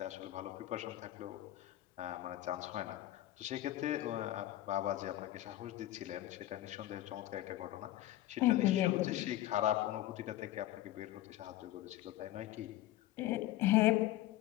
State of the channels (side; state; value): right; quieter; 14.8 dB